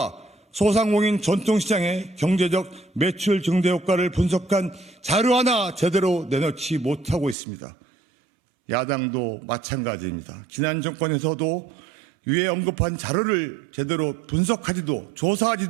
소상공인 전통시장의 경제적 매출 증대 효과를 분석한 자료 하나 제대로 내놓지 못하고 있습니다. 야당도 마찬가지입니다. 지난 정권에서도 위에 언급한 자료를 제대로 분석하지도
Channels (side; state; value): left; drops out; at 7.4 s